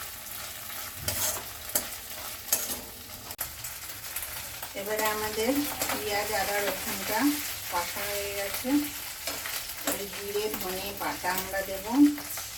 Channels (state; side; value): identical; both; correlation 1.00